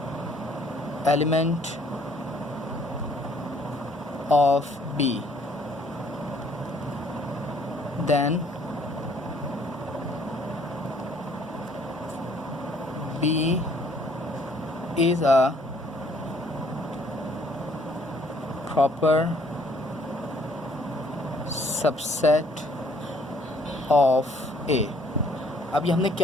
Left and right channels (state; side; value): normal; both; correlation 0.63